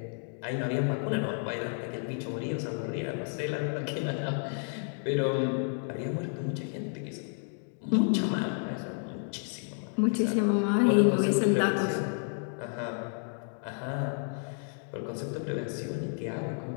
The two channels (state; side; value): silent; right; 57 dB below the other